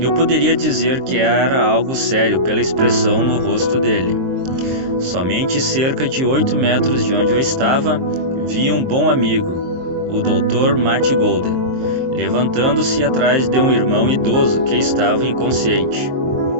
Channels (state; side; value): late; left; 23 ms